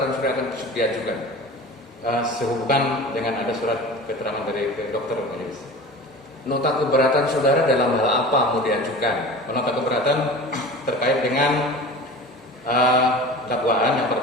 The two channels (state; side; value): normal; both; correlation 0.36